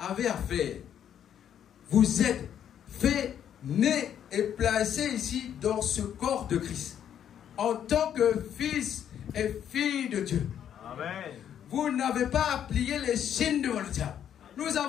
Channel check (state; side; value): quieter; right; 9.5 dB